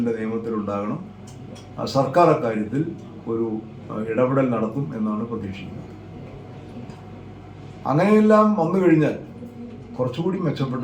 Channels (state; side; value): identical; both; correlation 1.00